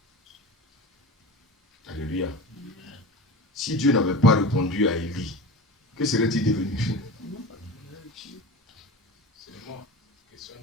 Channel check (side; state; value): both; normal; correlation 0.31